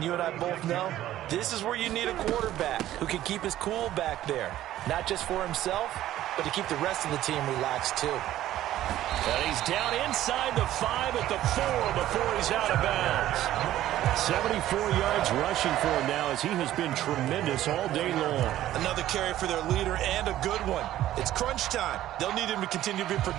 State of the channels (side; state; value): left; quieter; 13.5 dB